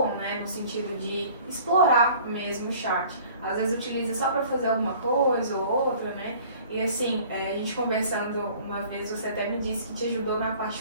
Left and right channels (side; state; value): both; inverted; correlation -0.50